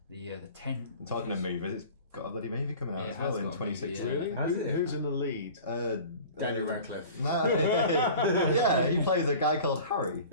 tent. Talking of movies, it's got a bloody movie coming out as well in 2016. Really? Who's in the lead? Daniel Radcliffe. No, yeah, he plays a guy called Harry.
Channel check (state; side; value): inverted; both; correlation -0.41